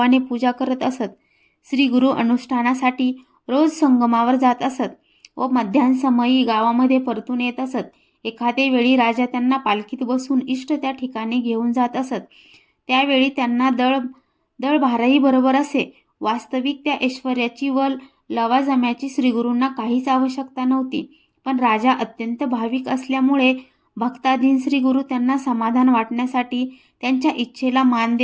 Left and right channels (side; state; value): both; identical; correlation 1.00